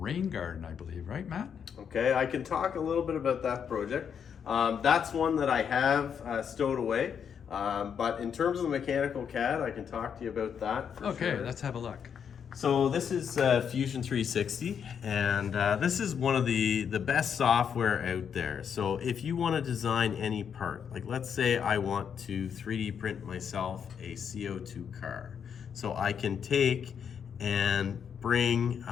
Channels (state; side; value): quieter; right; 7.5 dB